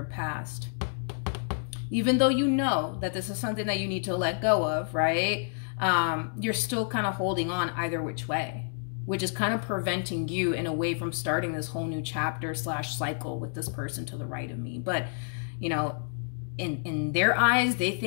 past. Even though you know that this is something that you need to let go of, right? You're still kind of holding on either which way, which is kind of preventing you in a way from starting this whole new chapter / cycle with this person to the right of me. But, you know, in their eyes, they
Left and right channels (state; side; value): silent; right; digital silence